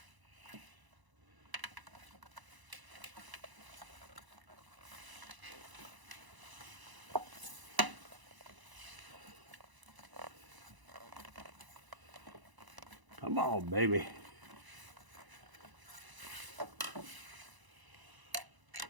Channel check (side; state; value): left; late; 1.0 ms